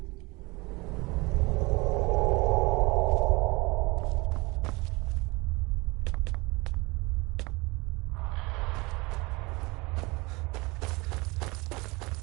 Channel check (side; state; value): left; quieter; 24.6 dB